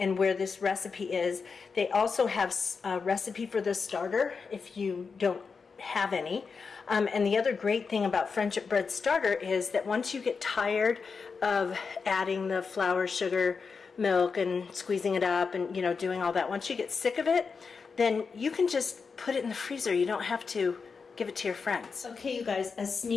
where this recipe is. They also have a recipe for the starter if you don't have any. And the other great thing about Friendship Bread Starter is that once you get tired of adding the flour, sugar, milk, and squeezing it up and, you know, doing all that, once you get sick of it, then you can just put it in the freezer. You don't have to give it to your friends. Okay, you guys, a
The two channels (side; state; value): right; quieter; 5.2 dB